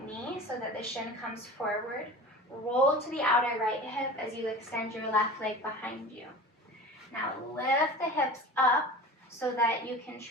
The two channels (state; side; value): normal; both; correlation 0.36